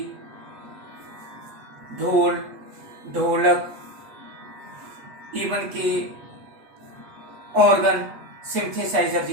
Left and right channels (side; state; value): left; late; 8.2 ms